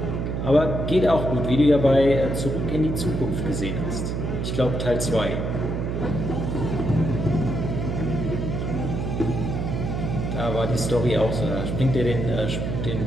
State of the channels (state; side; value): noise; right; hum, 2 dB below the sound